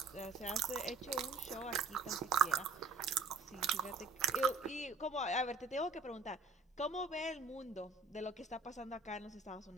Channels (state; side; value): quieter; left; 4.0 dB